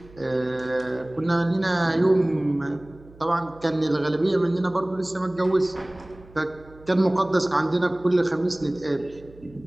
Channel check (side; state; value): right; noise; hum, 23 dB below the sound